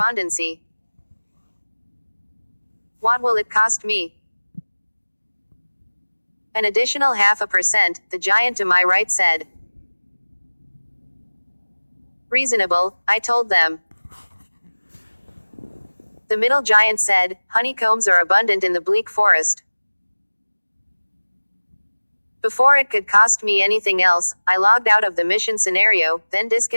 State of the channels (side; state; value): both; inverted; correlation -1.00